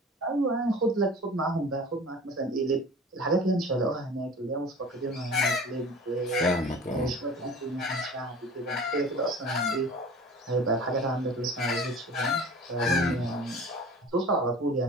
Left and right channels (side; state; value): both; normal; correlation 0.41